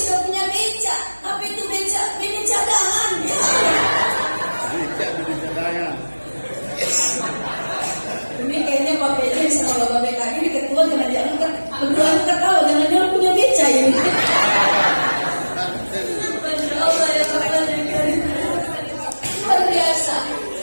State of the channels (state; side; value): inverted; both; correlation -1.00